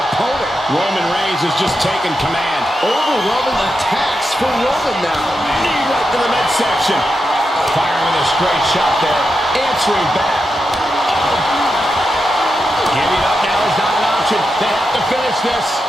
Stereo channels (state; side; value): normal; both; correlation 0.87